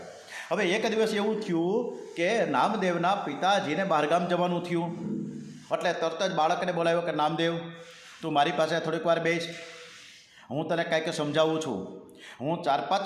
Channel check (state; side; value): identical; both; correlation 1.00